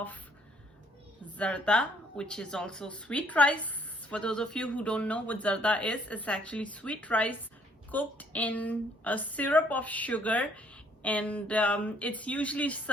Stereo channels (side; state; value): both; normal; correlation 0.64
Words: Zarda, which is also sweet rice. For those of you who don't know what Zarda is, it's actually sweet rice cooked in a syrup of sugar, and it's usually